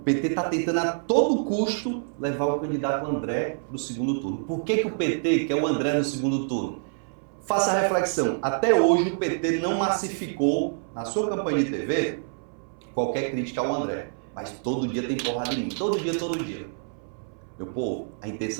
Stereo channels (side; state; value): left; silent; 61 dB below the other